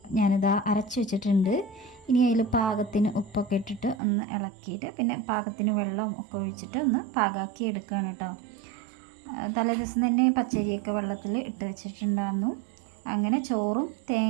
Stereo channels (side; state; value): left; drops out; at 4.0 s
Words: ഞാനിതാ അരച്ച് വെച്ചിട്ടുണ്ട്. ഇനി അതിൽ പാകത്തിന് ഉപ്പൊക്കെ ഇട്ടിട്ട് ഒന്ന് ഇളക്കിയിട്ട് പിന്നെ പാകത്തിന് വെള്ളം ഒക്കെ ഒഴിച്ചിട്ട് ഒന്ന് പാകാക്കി എടുക്കുകയാണ് കേട്ടോ. തലേദിവസം തന്നെ പച്ചരിയൊക്കെ വെള്ളത്തിൽ ഇട്ട് വെച്ചിട്ടുണ്ടായിരുന്നു. അങ്ങനെ ചോറും